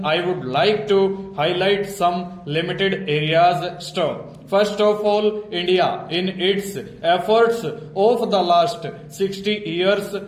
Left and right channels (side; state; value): both; identical; correlation 1.00